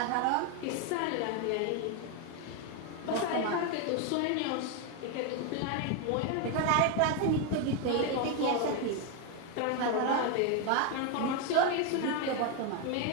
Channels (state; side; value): different; both; correlation 0.01